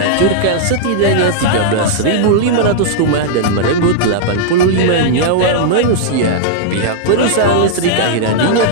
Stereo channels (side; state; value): both; different; correlation -0.02